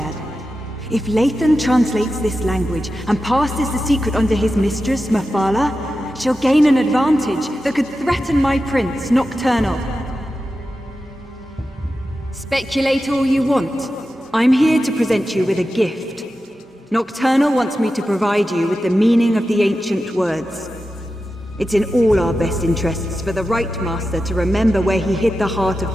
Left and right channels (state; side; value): normal; both; correlation 0.92